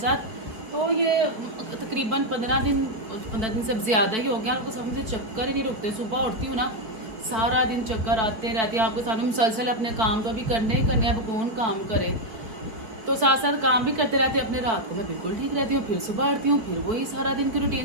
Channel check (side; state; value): left; late; 4.5 ms